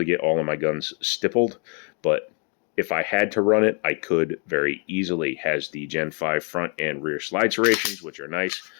get all of my guns stippled, but if I had to run it, I could very easily. Has the Gen 5 front and rear slide serrations, which are nice.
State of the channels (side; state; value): right; quieter; 38.6 dB